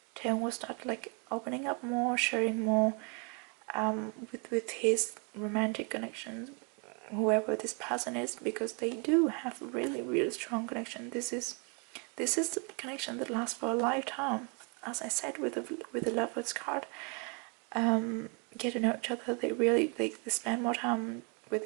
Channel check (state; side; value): quieter; left; 35.2 dB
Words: Taehyung will start like opening up more, sharing more with his romantic connections, whoever this person is, because they do have a really, really strong connection. This is the connection that lasts for a lifetime. As I said with the Lovers card, get to know each other. They spend more time